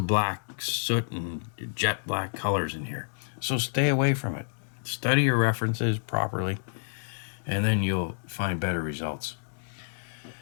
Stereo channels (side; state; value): right; silent; digital silence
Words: black soot and jet black colors in here. So stay away from it. Study your references properly, and then you'll find better results.